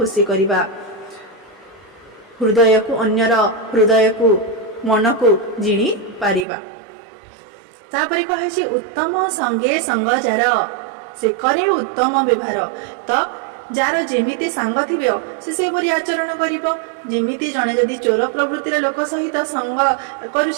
କରିବା, ହୃଦୟକୁ ଅନ୍ୟର ହୃଦୟକୁ ମନକୁ ଜିଣି ପାରିବା। ତାପରେ କହିଛି ଉତ୍ତମ ସଙ୍ଗେ ସଙ୍ଗ ଯାର ସେ କରେ ଉତ୍ତମ ବ୍ୟବହାର। ତ ଯାହାର ଯେମିତି ସାଙ୍ଗ ଥିବ ସେ ସେହିପରି ଆଚରଣ କରିବ। ଯେମିତି ଜଣେ ଯଦି ଚୋର ପ୍ରବୃତ୍ତିର ଲୋକ ସହିତ ସଙ୍ଗ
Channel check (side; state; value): left; drops out; at 6.5 s